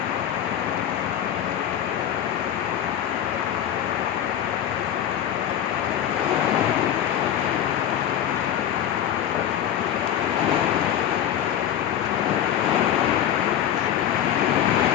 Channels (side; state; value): right; quieter; 10.4 dB